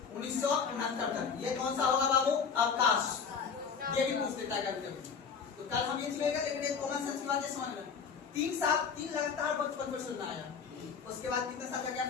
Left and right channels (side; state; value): right; quieter; 6.1 dB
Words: 1969 तक ये कौन सा होगा बाबू? अवकाश। ये भी पूछ लेता है कभी कभी, तो कल हम ये लेगा, लेकिन एक कॉमन सेंस की बात है, समझ लेना। 3 साल 3 लगातार 55 से आया, उसके बाद कितने साल का